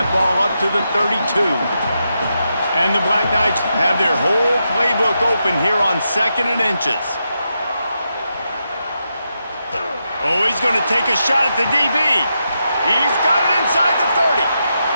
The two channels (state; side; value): inverted; both; correlation -0.85